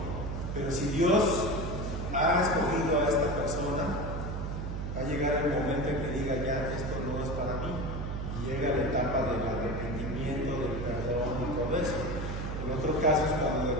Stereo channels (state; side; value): noise; right; hum, 4 dB below the sound